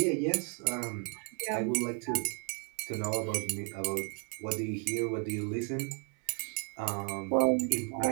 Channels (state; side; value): quieter; left; 35.0 dB